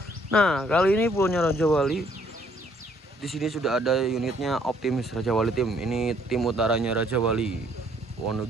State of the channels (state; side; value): normal; both; correlation 0.65